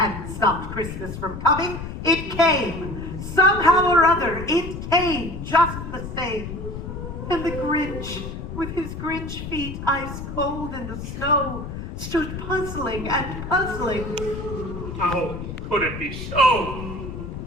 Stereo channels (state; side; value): noise; left; rumble, 8 dB below the sound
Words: stopped Christmas from coming. It came. Somehow or other, it came just the same. And the Grinch, with his Grinch feet ice cold in the snow, stood puzzling and puzzling. How could it be so?